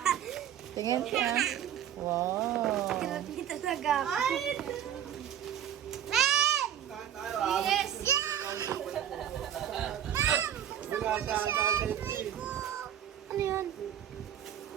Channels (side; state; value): left; quieter; 10.2 dB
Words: Tingin ka. Wow. Kirap ni talaga. Yes! Ano yan?